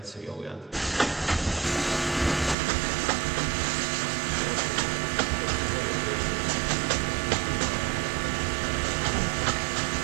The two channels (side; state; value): left; drops out; at 2.6 s